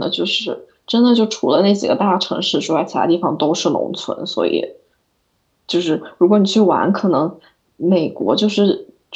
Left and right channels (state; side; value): identical; both; correlation 1.00